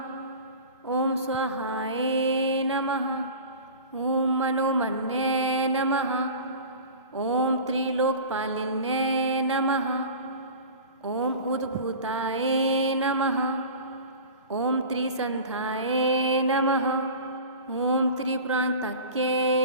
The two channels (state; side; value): inverted; both; correlation -0.37